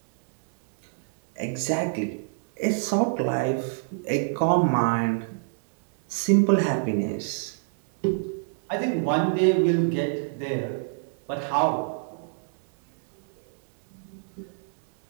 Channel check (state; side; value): silent; left; 61 dB below the other